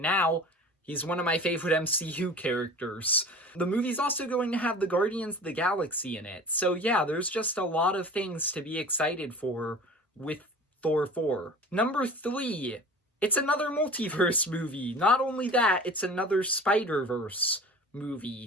now he's one of my favorite MCU characters. The movie's also going to have the Guardians of the Galaxy in it, so yeah, there's just a lot of things to be excited for with Thor 4. Number 3, it's another multiverse movie. Not only that, it's another Spider-Verse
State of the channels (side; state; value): both; normal; correlation 0.39